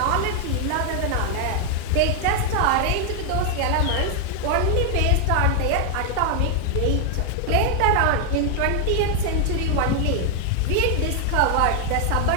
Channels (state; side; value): different; both; correlation 0.00